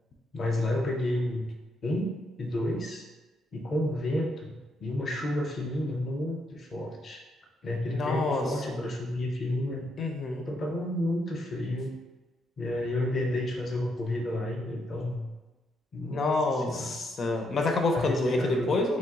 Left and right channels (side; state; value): both; normal; correlation 0.77